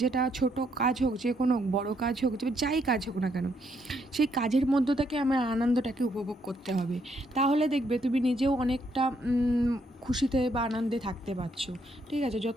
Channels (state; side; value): normal; both; correlation 0.74